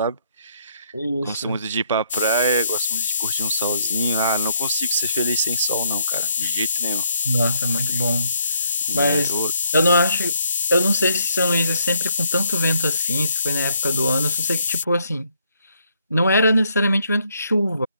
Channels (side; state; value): both; inverted; correlation -0.72